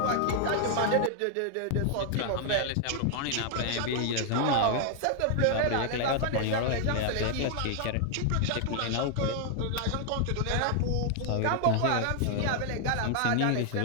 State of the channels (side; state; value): both; different; correlation 0.00